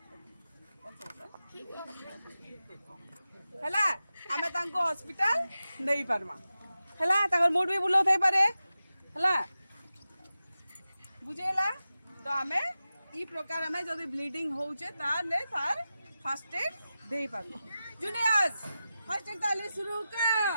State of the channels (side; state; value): both; inverted; correlation -0.93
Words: हैला। हमें तांकू हॉस्पिटल नहीं परमा हैला। ताकर मूड भी बुलो थे पारे हैला बुझेला। तो हमें ई प्रकार हमें जदि ब्लीडिंग होचे ताले तार फर्स्ट एड देई पाबो। जूनियर्स फर्स्ट एड ताले शुरू